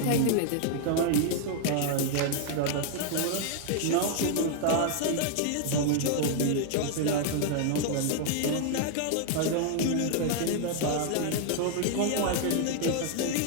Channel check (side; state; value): both; different; correlation 0.00